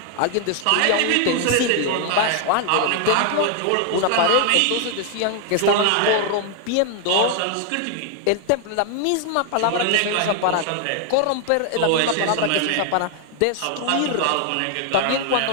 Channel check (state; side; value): different; both; correlation 0.00